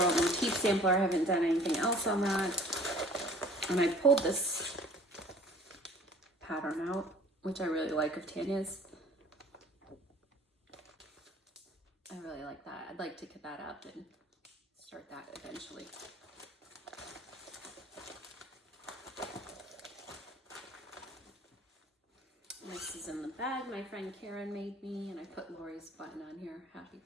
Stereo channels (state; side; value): normal; both; correlation 0.50